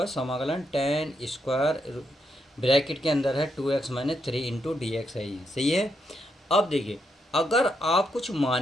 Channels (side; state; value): both; normal; correlation 0.80